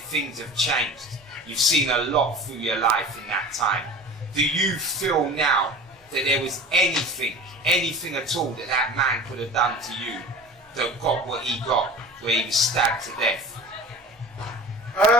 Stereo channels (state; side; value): normal; both; correlation 0.38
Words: have changed. You've seen a lot through your life in that time. Do you feel now that there was anything at all that man could have done to you that got what he got, where he was stabbed to death?